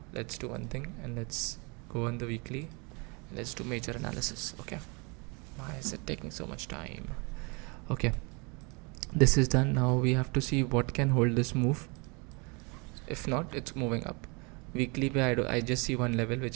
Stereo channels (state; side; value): quieter; left; 30.6 dB